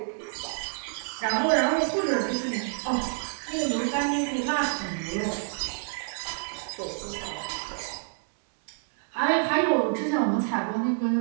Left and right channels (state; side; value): silent; left; digital silence